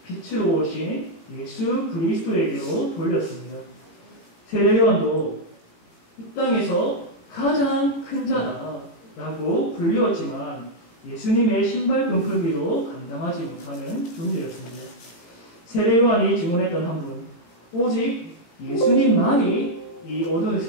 빛으로 오신 예수 그리스도에게로 돌렸습니다. 세례 요한도 이 땅에서 가장 큰 자다라고 불리웠지만 예수님의 신발끈 풀기도 감당하지 못하는 존재였습니다. 세례 요한이 증언했던 한 분, 오직 예수님만이 이 어두운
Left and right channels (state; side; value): late; right; 17 ms